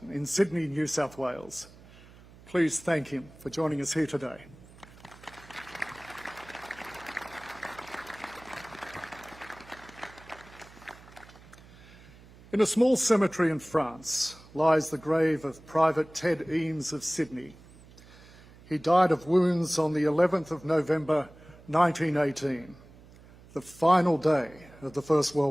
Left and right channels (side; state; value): right; noise; hum, 22 dB below the sound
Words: in Sydney, New South Wales. Please thank him for joining us here today. In a small cemetery in France lies the grave of Private Ted Eames of Sydney. He died of wounds on the 11th of November 1918, the final day of the First